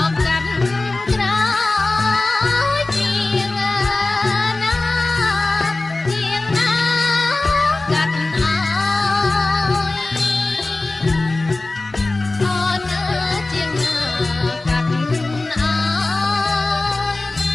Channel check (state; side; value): quieter; right; 3.1 dB